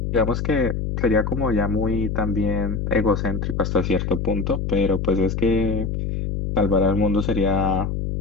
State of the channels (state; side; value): noise; left; hum, 2 dB below the sound